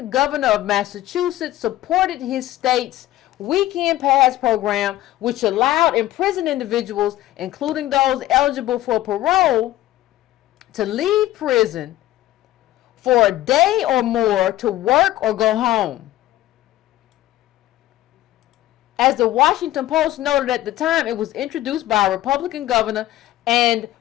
governor of Massachusetts, supported his state's weekend pass program, which allowed imprisoned individuals, including those eligible for parole, to leave prison for a day or more to work or go home. As the Washington Post noted at the time, it was introduced by a Republican governor, and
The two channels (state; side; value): quieter; right; 15.0 dB